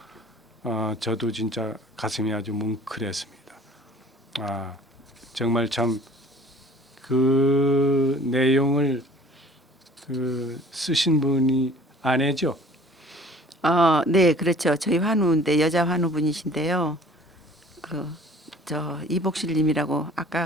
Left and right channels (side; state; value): both; normal; correlation 0.49